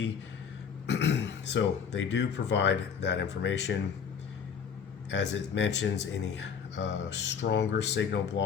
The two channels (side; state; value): right; quieter; 6.9 dB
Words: So they do provide that information. As it mentions, any stronger signal